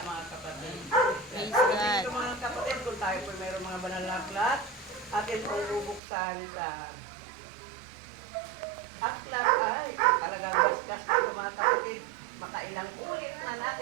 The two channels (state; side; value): drops out; left; at 6.0 s